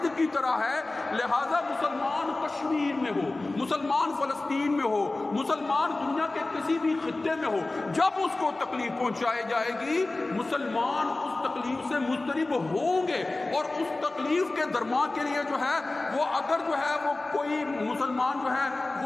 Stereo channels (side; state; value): right; quieter; 3.1 dB